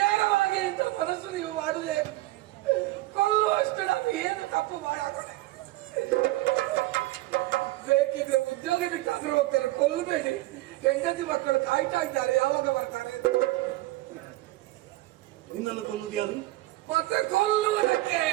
ಇಂಥ ಮನಸ್ಸು ನೀವು ಮಾಡುವೆ, ಕೊಲ್ಲುವಷ್ಟು ನಾನು ಏನು ತಪ್ಪು ಮಾಡಾಕೊಂಡೆ? ಬೇಕಿದ್ರೆ ಉದ್ಯೋಗ ಬಿಟ್ಟಾದ್ರೂ ಹೋಗ್ತಾರೆ, ಕೊಲ್ಲಬೇಡಿ. ಹೆಂಡತಿ ಮಕ್ಕಳು ಕಾಯ್ತಾ ಇದ್ದಾರೆ, ಯಾವಾಗ ಬರ್ತಾರೆ? ನಿನ್ನನ್ನು ಕೊಲ್ಲುವುದು ಯಾರು? ಮತ್ತೆ ಕೊಲ್ಲುವುದಕ್ಕೆ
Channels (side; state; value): left; quieter; 18.2 dB